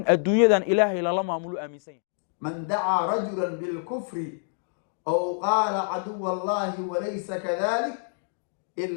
الدنيا إلهي لما أملو آمين سيه من دعا رجلا بالكفر أو قال عدو الله وليس كذلك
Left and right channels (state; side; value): silent; right; digital silence